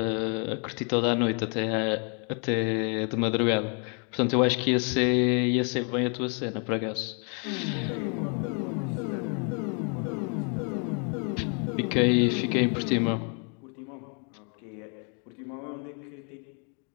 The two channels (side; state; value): right; quieter; 39.2 dB